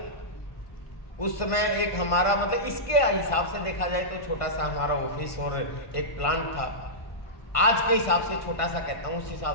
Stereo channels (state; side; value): late; right; 1.5 ms